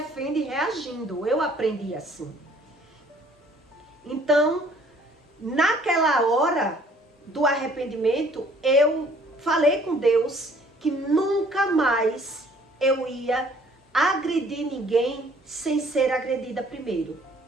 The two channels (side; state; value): both; normal; correlation 0.58